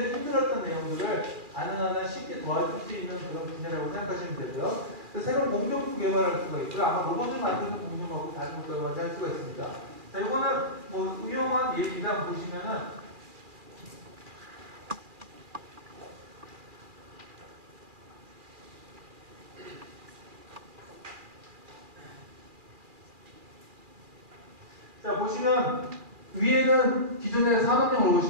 힘들었던 내용들을 가능한 쉽게 도와줄 수 있는 그런 분야라고 생각하시면 되고요. 새로운 공정도 개발할 수가 있고요. 아마 로봇을 만드는 공정하고 다른 것들을 먼저 할 수가 있습니다. 자, 이거는 뭐 유용한 예기가 보시면은 자, 보시면 위에는 기존의 산업용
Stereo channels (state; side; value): late; left; 2.4 ms